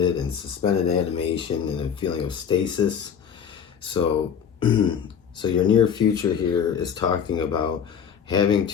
and suspended animation, and a feeling of stasis. So so your near future here is talking about having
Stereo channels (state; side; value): quieter; right; 7.7 dB